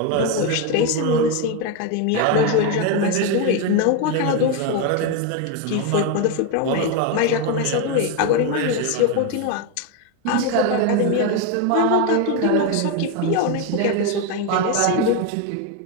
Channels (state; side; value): different; both; correlation 0.02